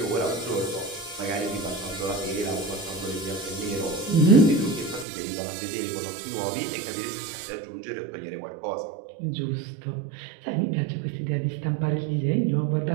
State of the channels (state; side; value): drops out; left; at 5.1 s